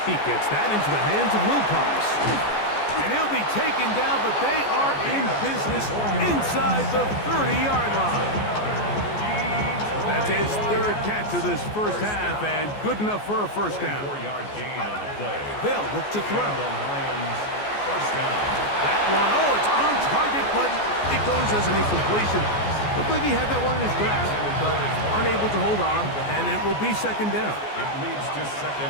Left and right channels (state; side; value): late; right; 14 ms